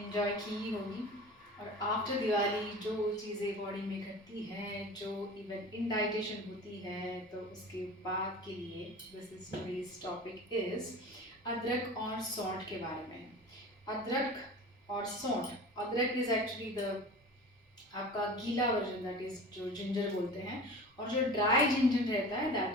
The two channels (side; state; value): both; normal; correlation 0.37